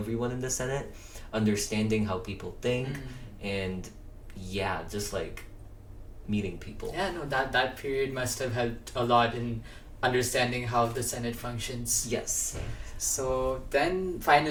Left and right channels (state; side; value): identical; both; correlation 1.00